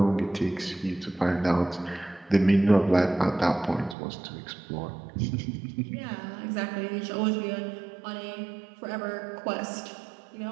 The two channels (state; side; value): drops out; left; at 4.0 s